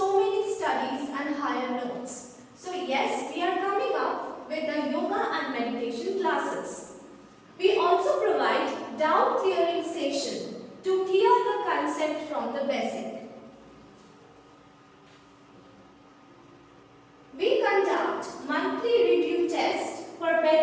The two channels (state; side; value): identical; both; correlation 1.00